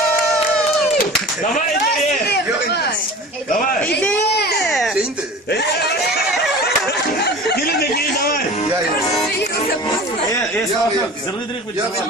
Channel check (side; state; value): both; normal; correlation 0.38